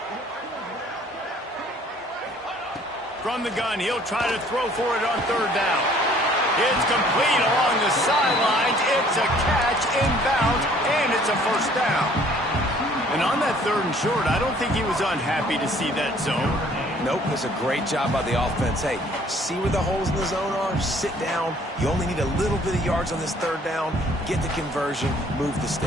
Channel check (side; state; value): both; normal; correlation 0.57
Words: From the gun, he'll try to throw for it on third down. It's complete along the sidelines. It's a catch inbounds, and it's a first down. And on that third and short, I don't think he was unhappy to see that zone. Nope, it's a great job by the offense. Hey, see where the holes in the zone are? Sit down. You only need a little bit of yards on this third down. Get the conversion. Move the